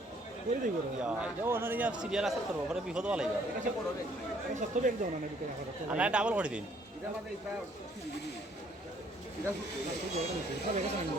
করে দিই করে সিরিয়াল আছে করবো পরে বিপদ হওয়া লাগবে সত্তর এক দাও না না বিকেল আর না ডাবল করে দিন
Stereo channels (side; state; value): both; normal; correlation 0.63